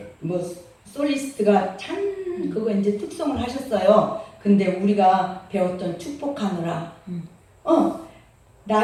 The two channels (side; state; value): both; identical; correlation 1.00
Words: 뭐 솔리스트가 참 그거 이제 특송을 하셨어요. 근데 우리가 배웠던 축복하느라